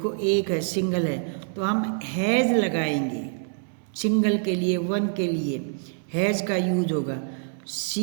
एक है, सिंगल है, तो हम हैज लगाएंगे सिंगल के लिए, 1 के लिए हैज का यूज होगा।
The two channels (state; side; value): silent; left; digital silence